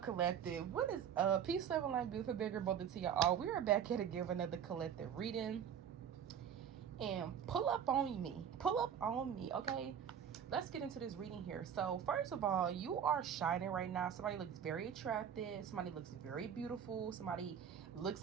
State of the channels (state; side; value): quieter; left; 8.5 dB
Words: collective? What is up? Peace, love, and light, beautiful, bigger, bolder to y'all. We are back here to give another collective reading. And pull up on me. Pull up on me, okay? Let's get into this reading here. So first of all, you are shining right now. Somebody looks very attractive. Somebody looks very beautiful. Somebody looks